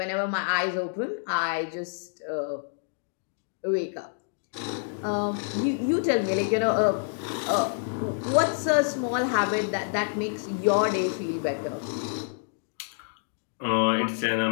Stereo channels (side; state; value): right; silent; digital silence